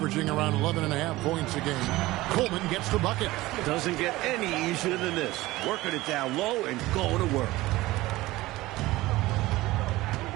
around 11.5 points a game. Coleman gets the bucket. Doesn't get any easier than this. Working it down low and going to work.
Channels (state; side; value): quieter; left; 18.5 dB